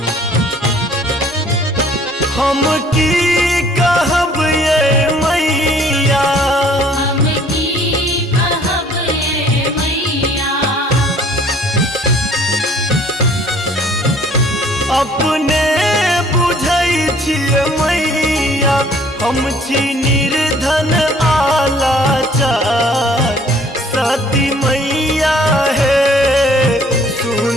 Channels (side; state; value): both; normal; correlation 0.57